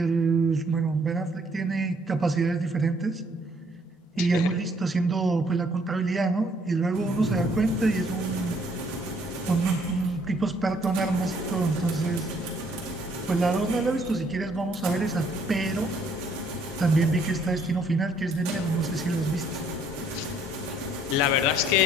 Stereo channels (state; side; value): normal; both; correlation 0.64